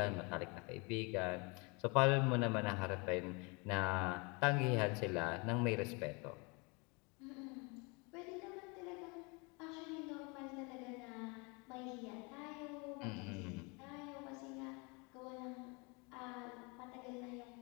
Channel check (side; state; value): right; quieter; 30.1 dB